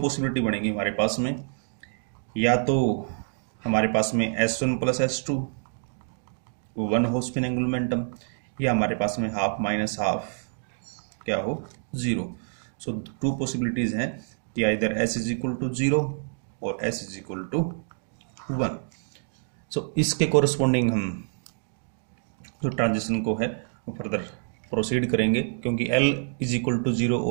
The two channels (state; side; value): silent; left; digital silence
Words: पॉसिबिलिटी बनेगी हमारे पास में. या तो हमारे पास में S1 प्लस S2 वन हो स्पिन एंगुलर मोमेंटम, या हमारे पास में हाफ माइनस हाफ क्या हो 0. सो टू पॉसिबिलिटीज़ हैं कि either S is equal to 0 और S is equal to 1. So इसके कोरस्पॉन्डिंग हम जो ट्रांजिशन को है वो फर्दर प्रोसीड करेंगे क्योंकि L is equal to 0